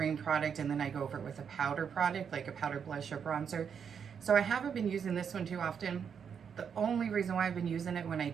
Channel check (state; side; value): quieter; left; 7.2 dB